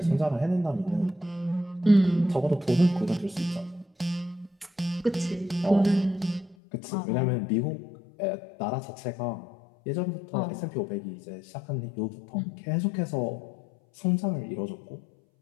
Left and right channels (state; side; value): drops out; right; at 6.6 s